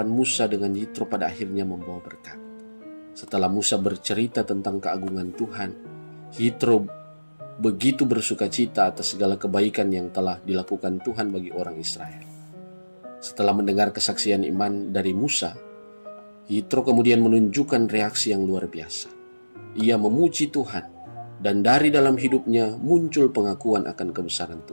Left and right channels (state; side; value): inverted; both; correlation -1.00